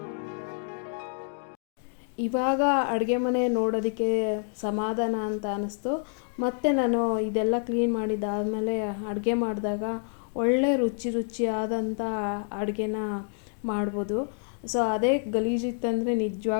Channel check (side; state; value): right; silent; 59 dB below the other